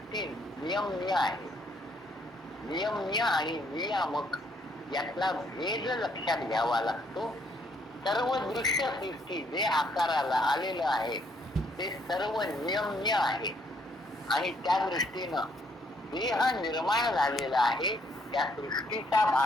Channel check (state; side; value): normal; both; correlation 0.69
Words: नियमनीय आहे. नियमनीय आणि नियामक यातला भेद लक्षात घ्यावा लागतो. सर्व दृश्य सृष्टी जे आकाराला आलेलं आहे ते सर्व नियमनीय आहे आणि त्या दृष्टीनं देह निर्माण झालेला आहे त्या सृष्टीचा